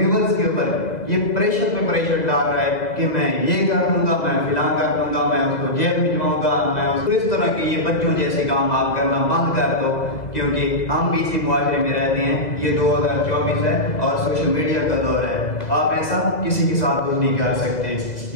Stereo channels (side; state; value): right; late; 2.0 ms